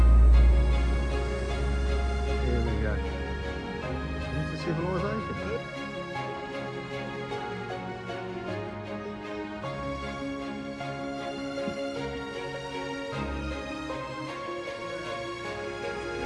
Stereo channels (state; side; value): identical; both; correlation 1.00